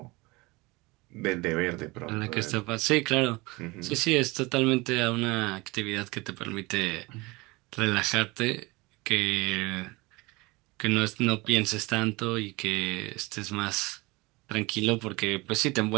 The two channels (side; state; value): left; quieter; 23.6 dB